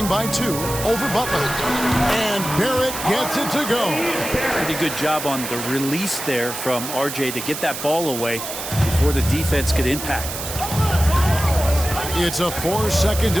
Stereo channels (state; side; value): noise; right; hiss, 7 dB below the sound